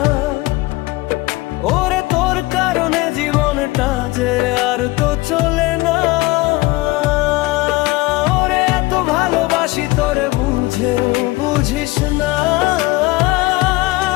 ওরে তোর কারণে জীবনটা যে আর তো চলে না। ওরে এত ভালোবাসি তোরে বুঝেও বুঝিস না,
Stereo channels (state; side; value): quieter; right; 20.7 dB